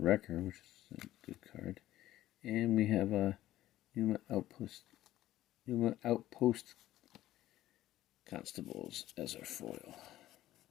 which is a good card. And we have a Numa Outpost Constables as our foil.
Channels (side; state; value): right; quieter; 14.3 dB